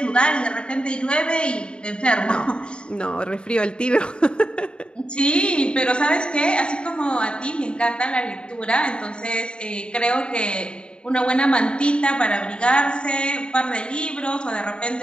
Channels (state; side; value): late; right; 0.053 ms